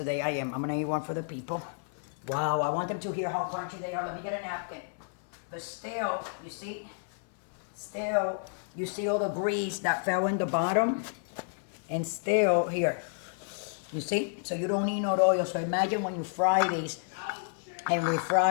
I am. I'm gonna eat one for the people. Wow, I want them to hear how crunchy they are. Let me get a napkin. But still, you see? Still, you see all the grease that fell in the bottom? And still, here. You see? So you don't need no oil. So imagine when you fry these and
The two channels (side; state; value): right; silent; 57 dB below the other